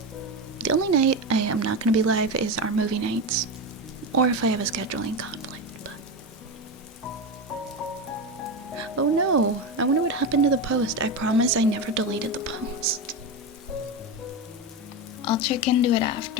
The only night I am not going to be live is our movie nights, or if I have a scheduling conflict, but... Oh no, I wonder what happened to the post. I promise I never deleted the post. I'll check into it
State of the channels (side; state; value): both; normal; correlation 0.17